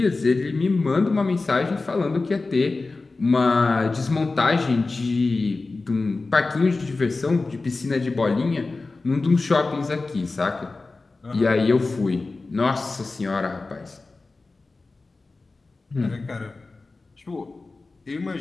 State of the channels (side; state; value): right; quieter; 3.6 dB